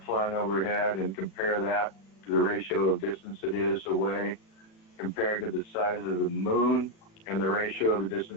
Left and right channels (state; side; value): late; right; 36 ms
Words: flying overhead and compare that to the ratio of distance it is away compared to the size of the moon and the ratio of the